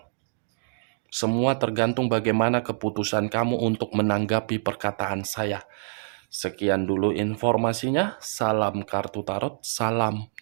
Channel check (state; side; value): silent; left; digital silence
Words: Semua tergantung bagaimana keputusan kamu untuk menanggapi perkataan saya. Sekian dulu informasinya. Salam kartu tarot, salam